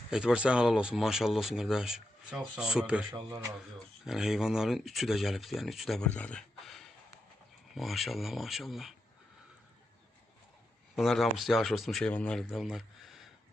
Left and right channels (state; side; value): normal; both; correlation 0.86